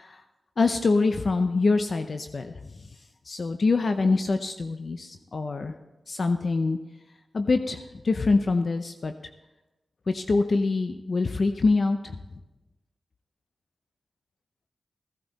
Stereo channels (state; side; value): quieter; right; 3.2 dB